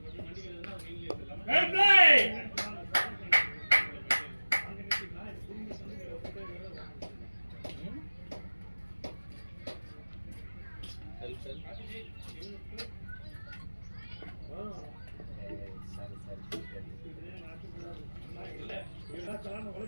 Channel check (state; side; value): inverted; both; correlation -1.00